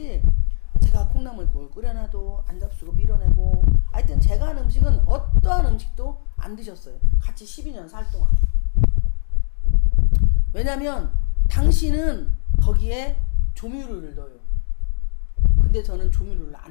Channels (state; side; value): silent; right; 57 dB below the other